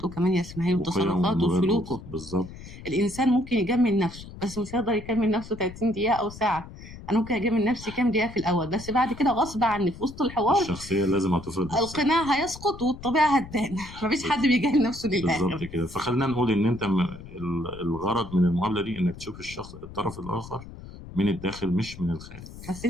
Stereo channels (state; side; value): noise; left; rumble, 15 dB below the sound